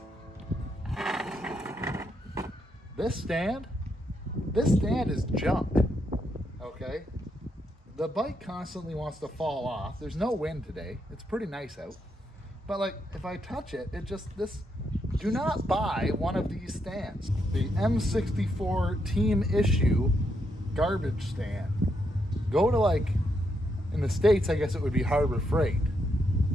This stand is junk, okay? The bike constantly wants to fall off. There's no wind today. It's pretty nice out. But like, if I touch it, do not buy one of these stands. The M64 team issue garbage stand. Go to in the States, I guess it would be Harbor Freight.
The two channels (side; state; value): both; normal; correlation 0.79